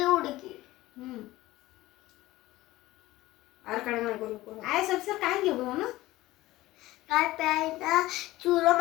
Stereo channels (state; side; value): quieter; right; 17.6 dB